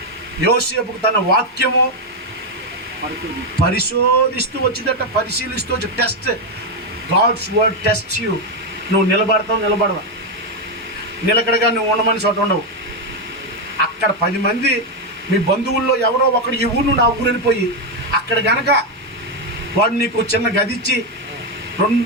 యోసేపుకు తన వాక్యము పరిశోధిస్తూ వచ్చిందట, పరిశీలిస్తూ వచ్చి. Test, God's word test you. నువ్వు నిలబడవా? నిలకడగా నువ్వు ఉండమని చోట ఉండవు. అక్కడ 10 మంది మీ బంధువుల్లో ఎవరో ఒకడు ఈ ఊరు నుండి ఆ ఊరు వెళ్ళిపోయి అక్కడ గనక వాడు నీకు చిన్న గది ఇచ్చి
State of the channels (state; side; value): normal; both; correlation 0.05